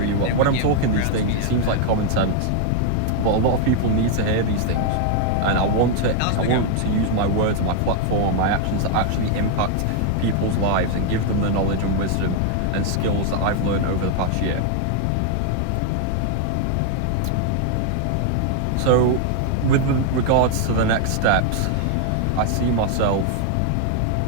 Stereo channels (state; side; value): different; both; correlation 0.00